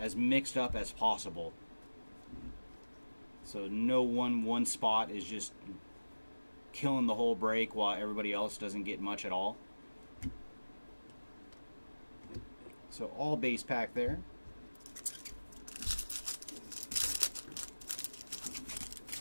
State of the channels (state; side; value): inverted; both; correlation -1.00